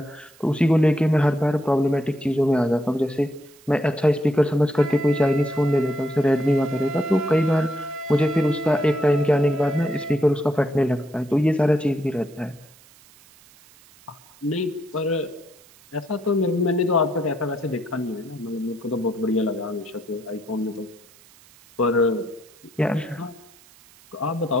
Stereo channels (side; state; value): right; noise; hiss, 26 dB below the sound